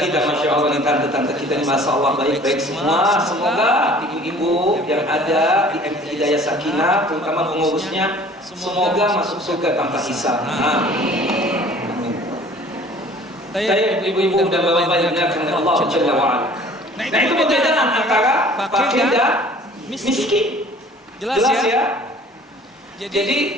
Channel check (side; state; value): both; normal; correlation 0.50